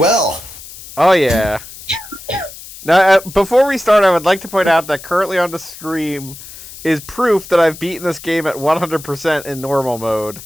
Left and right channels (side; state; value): left; noise; hiss, 16 dB below the sound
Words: Oh yeah. Now, before we start, I would like to point out that currently on the stream is proof that I've beaten this game at 100% in normal mode.